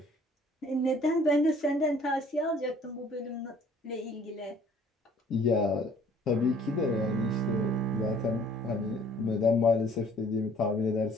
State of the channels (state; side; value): normal; both; correlation 0.57